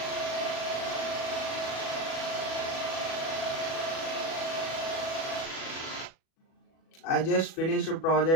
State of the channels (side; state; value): right; late; 37 ms